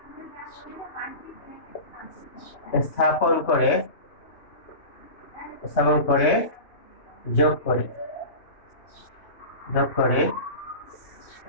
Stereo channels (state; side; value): late; right; 3.1 ms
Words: স্থাপন করে যোগ করে